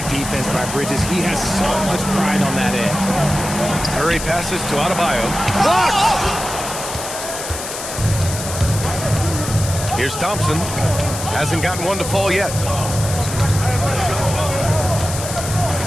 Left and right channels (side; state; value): left; noise; hiss, 7 dB below the sound